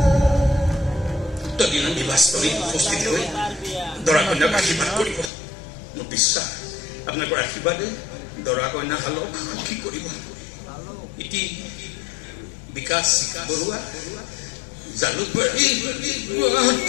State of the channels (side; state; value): right; drops out; at 5.3 s